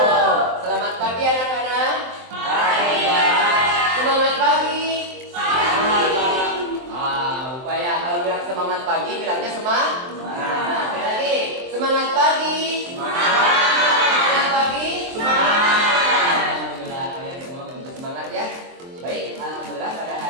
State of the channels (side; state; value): left; late; 23 ms